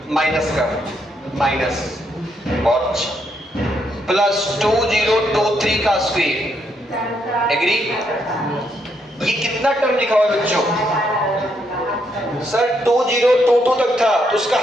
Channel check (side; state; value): both; normal; correlation 0.76